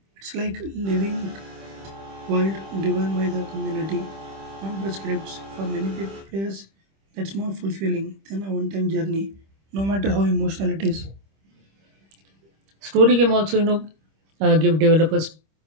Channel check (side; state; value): left; late; 25 ms